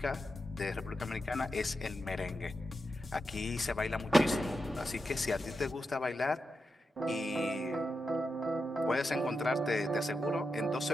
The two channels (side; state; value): both; normal; correlation 0.88